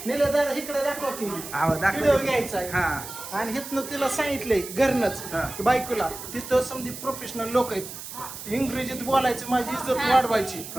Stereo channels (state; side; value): noise; right; hiss, 11 dB below the sound